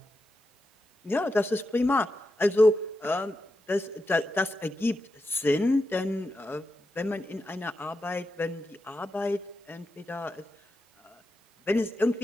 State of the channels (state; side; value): normal; both; correlation 0.88